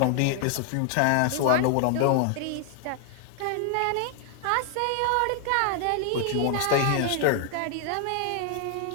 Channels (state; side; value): different; both; correlation 0.00